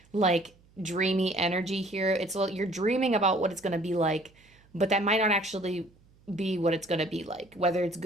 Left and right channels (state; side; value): noise; right; hum, 30 dB below the sound